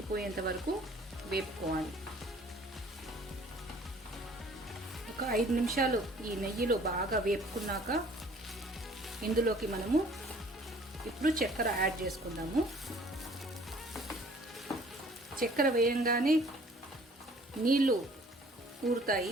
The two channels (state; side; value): normal; both; correlation 0.54